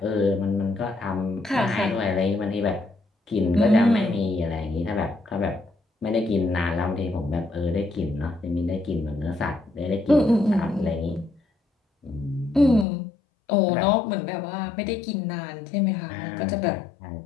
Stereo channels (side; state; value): right; drops out; at 12.9 s